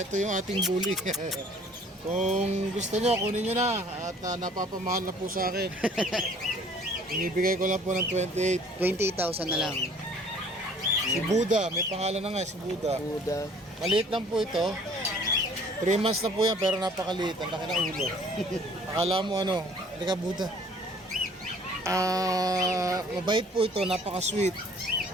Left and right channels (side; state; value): both; normal; correlation 0.55